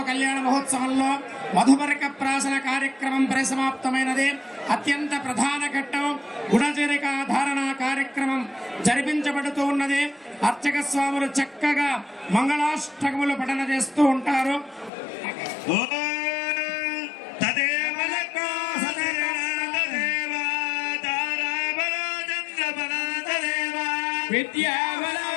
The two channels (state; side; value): drops out; right; at 14.9 s